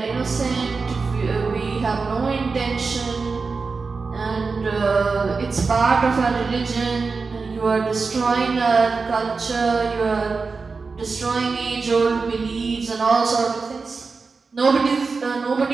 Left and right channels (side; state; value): left; quieter; 4.5 dB